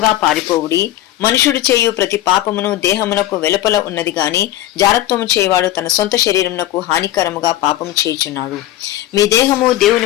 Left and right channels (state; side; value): quieter; right; 14.2 dB